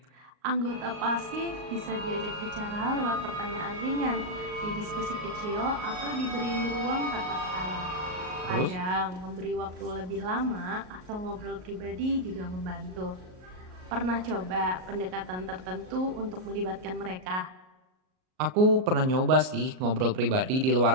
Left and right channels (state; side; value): late; left; 38 ms